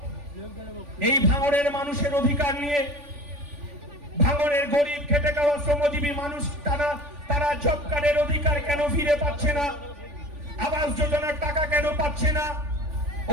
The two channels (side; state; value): left; late; 3.5 ms